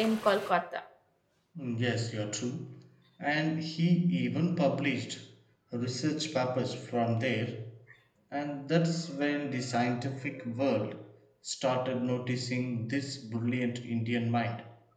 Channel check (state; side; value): identical; both; correlation 1.00